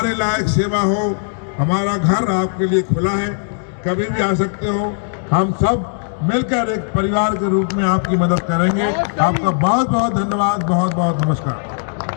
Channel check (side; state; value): right; silent; digital silence